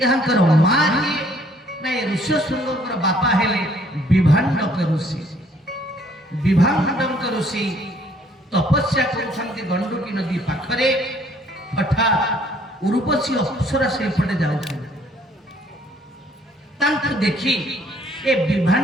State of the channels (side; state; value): both; normal; correlation 0.62